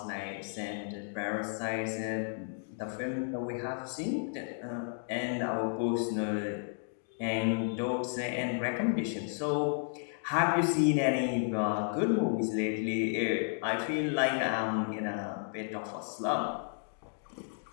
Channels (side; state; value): right; silent; digital silence